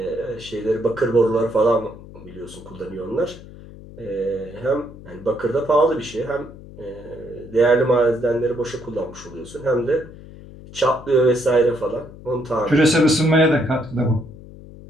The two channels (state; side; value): noise; left; hum, 17 dB below the sound